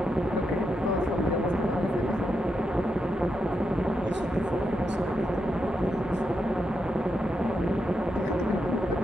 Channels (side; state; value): both; normal; correlation 0.85